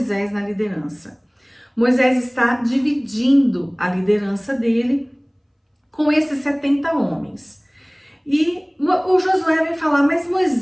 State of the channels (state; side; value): identical; both; correlation 1.00